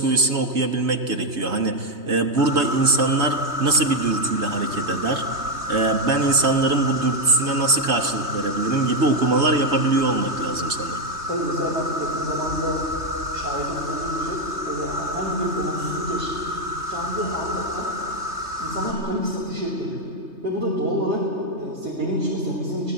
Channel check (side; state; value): left; late; 3.2 ms